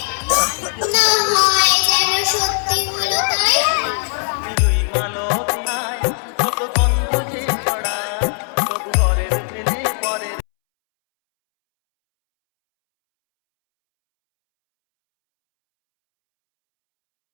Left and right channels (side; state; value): right; silent; 67 dB below the other